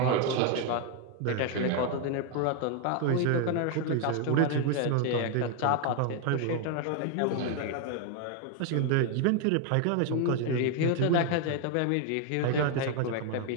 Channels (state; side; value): different; both; correlation 0.01